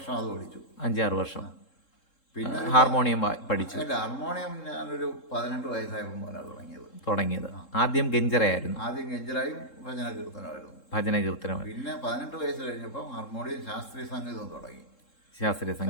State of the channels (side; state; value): right; late; 3.7 ms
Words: അത് പഠിച്ചു. 5-6 വർഷം. പിന്നെ ഹാർമോണിയം പഠിച്ചു? അല്ല, ഹാർമോണിയം ഞാനൊരു 18 വയസ്സായപ്പോൾ മുതലാണ് തുടങ്ങിയത്. ആദ്യം ഗഞ്ചറയായിരുന്നു. ആദ്യം ഗഞ്ചറായും ഭജന കീർത്തനമായിരുന്നു. ഭജന കീർത്തനം. പിന്നെ 18 വയസ്സ് കഴിഞ്ഞപ്പോൾ ഹാർമോണിയം ശാസ്ത്രീയ സംഗീതം തുടങ്ങി. ശാസ്ത്രീയ